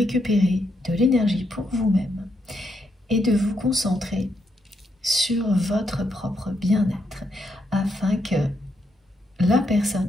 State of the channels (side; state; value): both; normal; correlation 0.79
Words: de l'énergie pour vous-même et de vous concentrer sur votre propre bien-être afin que la